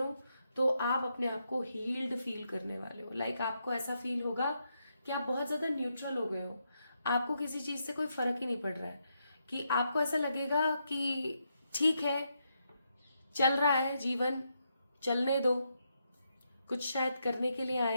तो आप अपने आप को हील्ड फील करने वाले हो, लाइक आपको ऐसा फील होगा कि आप बहुत ज्यादा न्यूट्रल हो गए हो, आपको किसी चीज से कोई फर्क ही नहीं पड़ रहा है, कि आपको ऐसा लगेगा कि ठीक है चल रहा है जीवन, चलने दो, कुछ शायद करने के लिए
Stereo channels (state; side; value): inverted; both; correlation -0.81